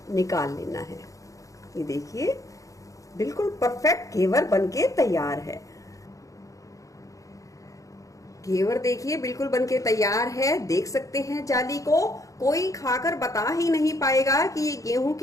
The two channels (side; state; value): right; late; 0.16 ms